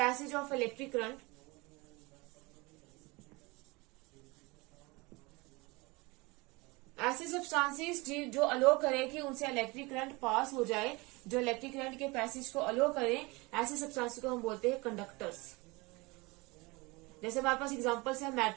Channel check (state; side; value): quieter; left; 24.8 dB